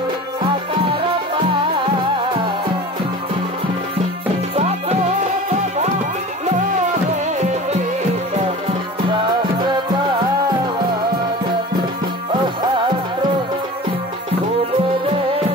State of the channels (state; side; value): normal; both; correlation 0.37